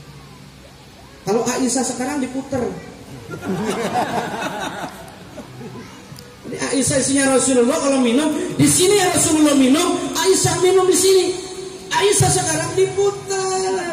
Kalau Aisyah sekarang diputer. Jadi Aisyah isinya Rasulullah kalau minum di sini ya Rasulullah minum, Aisyah minum di sini. Aisyah sekarang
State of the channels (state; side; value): identical; both; correlation 1.00